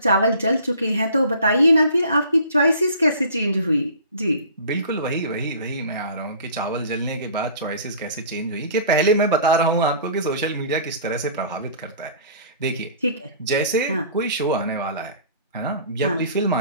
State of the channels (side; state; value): both; inverted; correlation -0.46